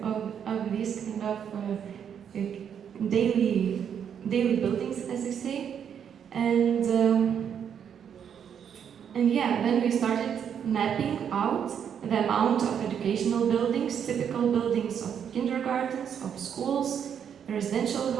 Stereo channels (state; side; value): quieter; left; 8.2 dB